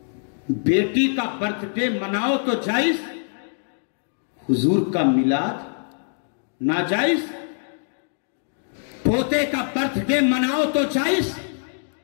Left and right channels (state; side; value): silent; right; digital silence